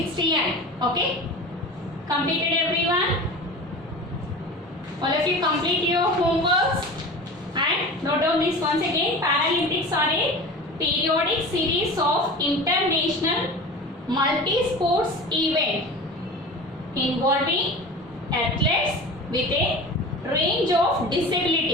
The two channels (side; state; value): both; normal; correlation 0.34